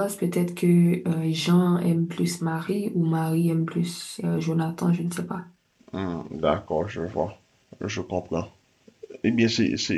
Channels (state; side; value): identical; both; correlation 1.00